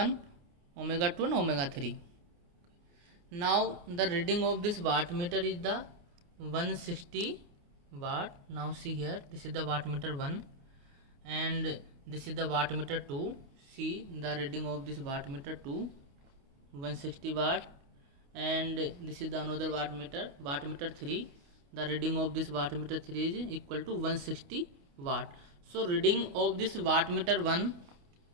omega 2 and omega 3. Now the reading of this wattmeter is the 160 watt. Now see here, this is the wattmeter 1, and this is the wattmeter 2. See the reading of this wattmeter 2, 160 watt, and this is the another wattmeter 3. The reading of this wattmeter 3 is equal to 160 watt. So reading of this wattmeter 1,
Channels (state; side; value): late; left; 28 ms